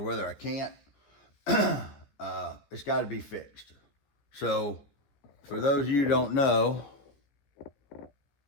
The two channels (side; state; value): right; late; 14 ms